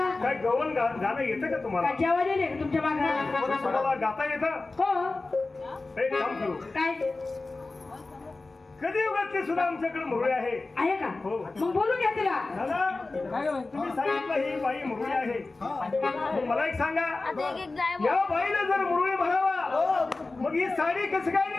काय गवण गाणं येतं का तुम्हाला जेवण येते तुमच्या मागं तुम्हाला गाता येतं हो एक काम करू काय कधी उगाच सुद्धा आमच्याकडे मुरळी आहे का हो मग बोलू घ्या तिला तुम्ही सांगितलं ही बाई मुरळी आहे मला एक सांगा या बाईला जर मुरळी म्हणावा मग ही साडी कसं काय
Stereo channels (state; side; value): quieter; right; 3.4 dB